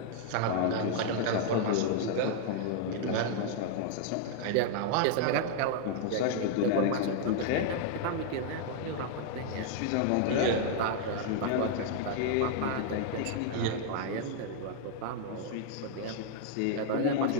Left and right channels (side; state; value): both; different; correlation -0.01